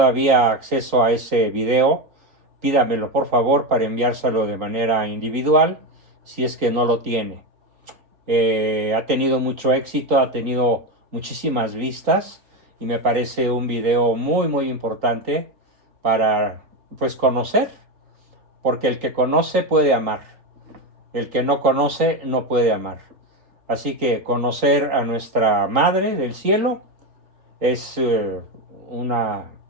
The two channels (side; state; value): left; late; 3.8 ms